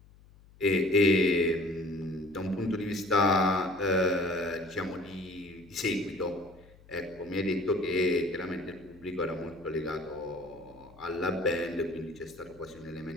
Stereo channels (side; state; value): left; noise; hum, 25 dB below the sound